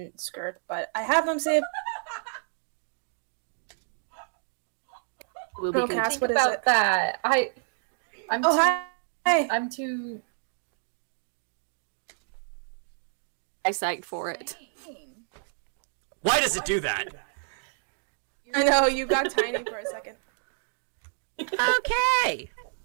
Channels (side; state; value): left; silent; digital silence